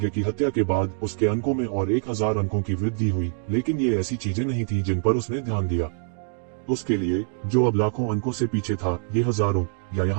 की हत्या के बाद उसके अंकों में और 1000 अंकों की वृद्धि हुई, लेकिन ये ऐसी चीजें नहीं थी जिन पर उसने ध्यान दिया। उसके लिए, जो अब लाखों अंकों से पीछे था, ये हजारों या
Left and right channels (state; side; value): silent; left; 62 dB below the other